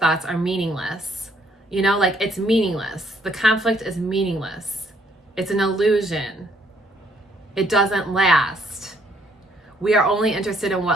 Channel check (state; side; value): normal; both; correlation 0.67